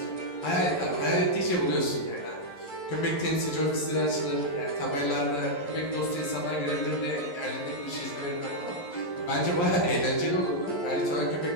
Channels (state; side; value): late; right; 11 ms